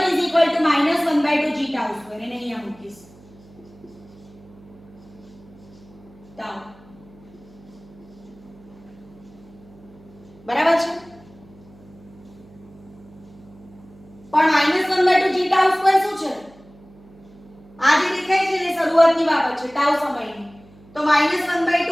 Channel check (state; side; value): noise; right; hum, 24 dB below the sound